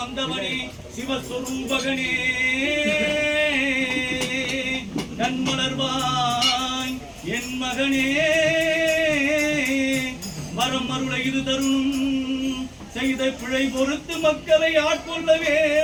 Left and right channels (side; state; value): both; identical; correlation 1.00